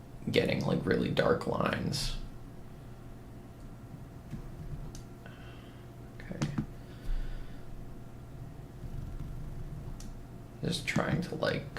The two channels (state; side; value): identical; both; correlation 1.00